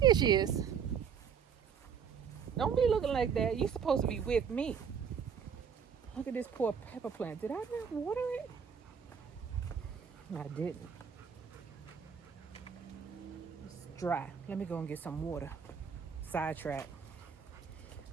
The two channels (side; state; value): left; quieter; 7.0 dB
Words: she is. Don't be looking like that. You're supposed to be with me. Look at this poor pepper plant. Did I not water it? I didn't. It's dry. Let me go and get some water. Sidetrack.